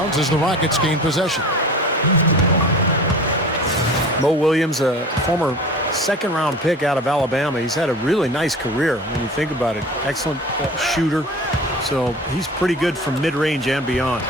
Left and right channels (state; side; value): normal; both; correlation 0.39